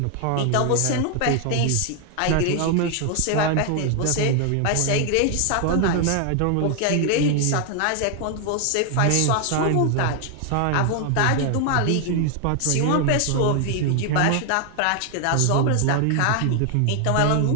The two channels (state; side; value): different; both; correlation 0.00